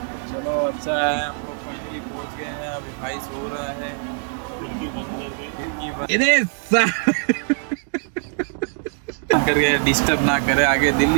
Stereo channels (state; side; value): silent; left; 59 dB below the other